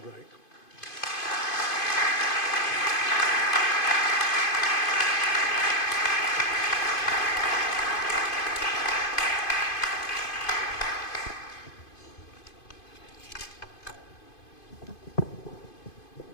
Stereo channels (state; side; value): late; right; 2.5 ms